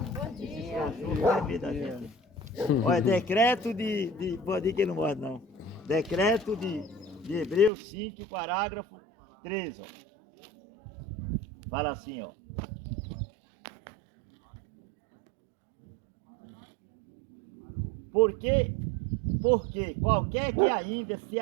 Olha, decreto de pode ir que não morre não. Decreto de Hebreus 5, parágrafo 13. Ó. Fala assim, ó. Porque qualquer que ainda se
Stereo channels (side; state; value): left; drops out; at 7.7 s